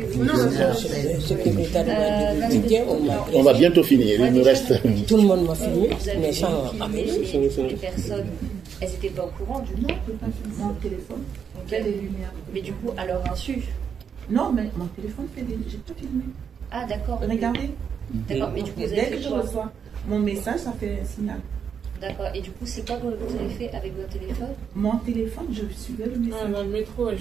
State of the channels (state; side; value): quieter; left; 7.2 dB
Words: On va bientôt finir, il nous reste... Tout le monde m'a filmé, mais sans les personnes, elles n'étaient pas au courant du nom. Mon téléphone fait des lumières. Mais du coup, à leur insu. Non, mais mon téléphone fait des... J'ai pas filmé. Ah, d'accord. Regardez. D'accord, mais du coup, vous dès avez que fait je quoi? reçois mon message, ça fait un signal. D'accord, et du coup, c'est quoi que vous avez fait avec votre téléphone? Mon téléphone, je suivais le message. Dans le métro,